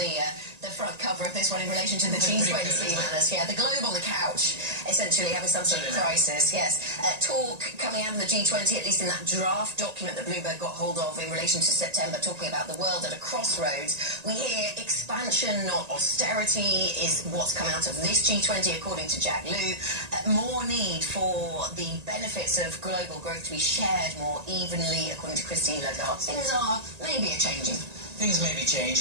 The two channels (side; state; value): left; late; 1.8 ms